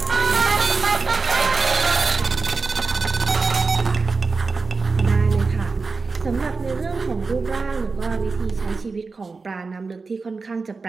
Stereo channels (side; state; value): left; quieter; 4.3 dB